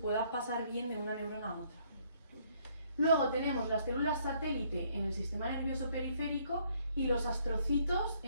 pasar bien de una neurona a otra. Luego tenemos las células satélite en el sistema nervioso periférico y los astrocitos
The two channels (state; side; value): inverted; both; correlation -0.66